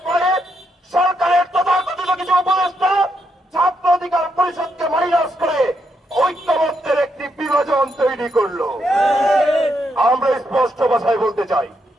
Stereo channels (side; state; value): both; normal; correlation 0.79